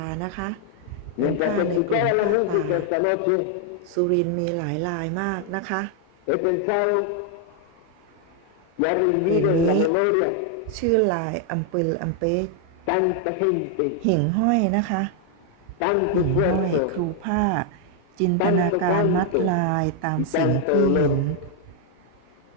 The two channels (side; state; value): both; different; correlation 0.00